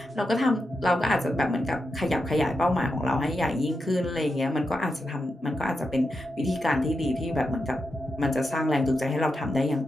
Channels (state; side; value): normal; both; correlation 0.87